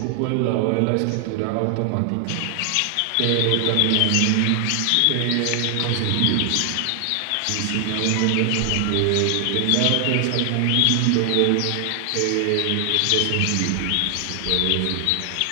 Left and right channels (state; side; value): different; both; correlation 0.00